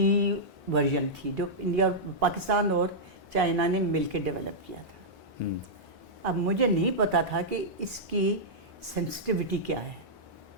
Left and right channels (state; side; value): normal; both; correlation -0.10